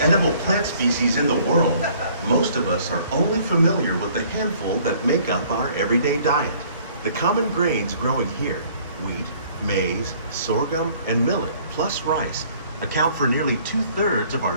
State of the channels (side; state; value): both; inverted; correlation -0.57